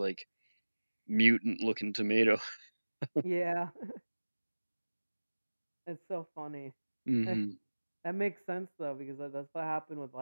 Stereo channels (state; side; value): inverted; both; correlation -1.00